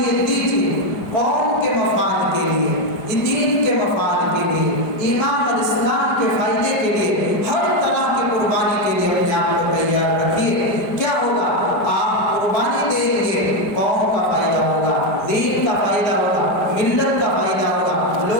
دیجیے، قوم کے مفاد کے لیے، دین کے مفاد کے لیے، ایمان اور اسلام کے فائدے کے لیے، ہر طرح کی قربانی کے لیے اپنے آپ کو تیار رکھیے۔ کیا ہوگا؟ آپ قربانی دیں گے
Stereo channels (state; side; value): late; right; 4.9 ms